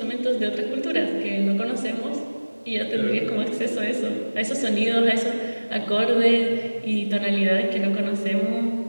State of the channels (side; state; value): both; inverted; correlation -1.00